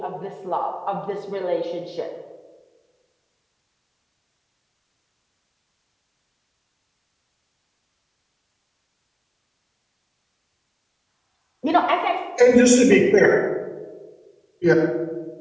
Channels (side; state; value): both; identical; correlation 1.00